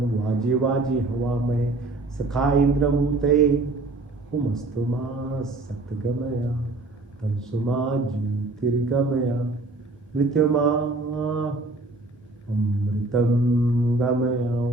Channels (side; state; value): left; quieter; 3.1 dB